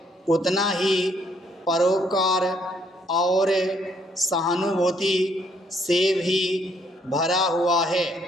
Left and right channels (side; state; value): both; normal; correlation 0.68